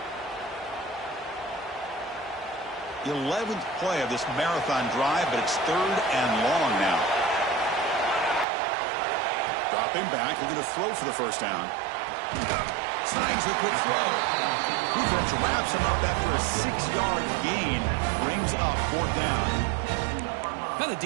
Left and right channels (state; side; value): drops out; left; at 8.5 s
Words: The 11th play of this marathon drive, but it's 3rd and long now. Dropping back, looking to throw for the first down. Snags the quick throw. Defense wraps him up after a 6-yard gain. Brings up 4th down. Now the